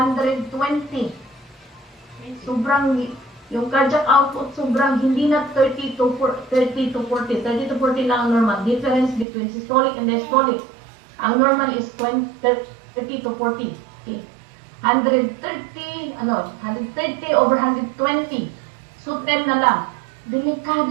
Sobrang, yung cardiac output sobrang hindi na 30 to 40. 30 to 40 lang ang normal. Difference between systolic and diastolic. Ang normal is 30 to 40. Okay. 130 over 120. So 10 na lang.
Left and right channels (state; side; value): drops out; left; at 9.2 s